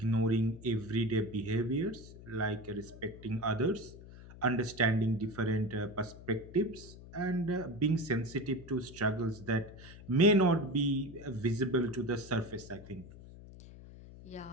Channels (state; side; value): noise; left; hum, 17 dB below the sound